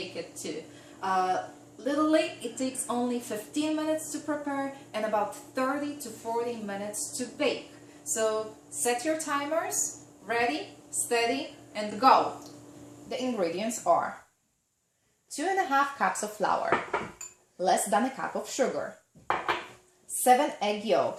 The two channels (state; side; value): identical; both; correlation 1.00